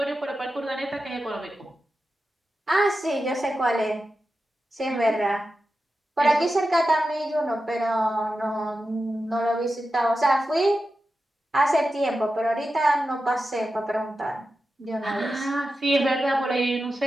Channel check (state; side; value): normal; both; correlation 0.91